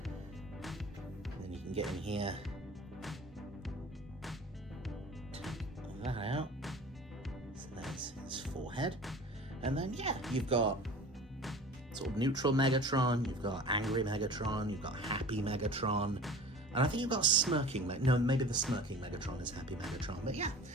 And then you can get in here. Take that out. So there's his forehead. And then, yeah, you've got sort of neutral Megatron, you've got angry Megatron, you've got happy Megatron, and I think you've got smirking no, maybe the smirking Megatron is happy Megatron, but yeah,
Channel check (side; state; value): both; normal; correlation 0.41